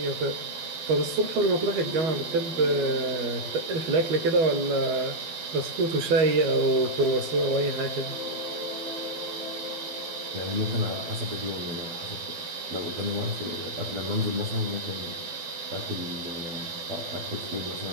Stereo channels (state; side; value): late; left; 12 ms